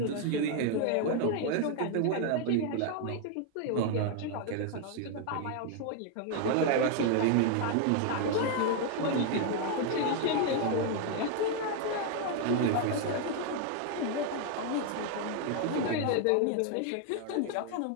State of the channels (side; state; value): both; different; correlation 0.00